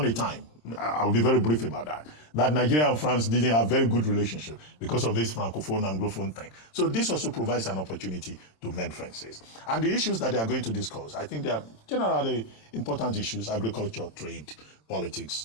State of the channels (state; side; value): late; right; 26 ms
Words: a time, I'll be very brief about that Nigeria and France didn't have very good relationship because of this Francophone and Anglophone thing. So this also provides an opportunity to mend friendships. And the issues that they are going to discuss, I think they are generally important issues: agriculture, trade, politics,